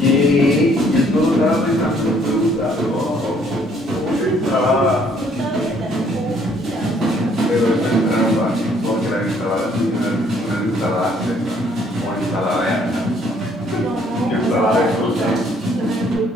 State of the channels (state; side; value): normal; both; correlation 0.64